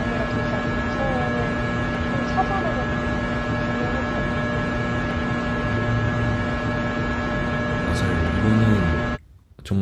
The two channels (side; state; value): both; identical; correlation 1.00